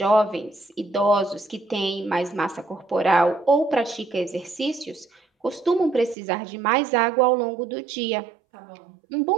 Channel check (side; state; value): left; drops out; at 6.2 s